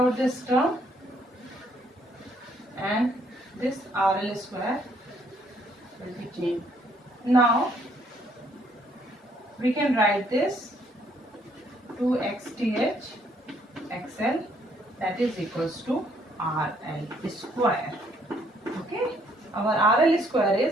this term, and this RL square will be changed. Now we can write this 2 XTH XL, that is equals to RL square. Okay, our RL square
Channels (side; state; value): both; normal; correlation 0.67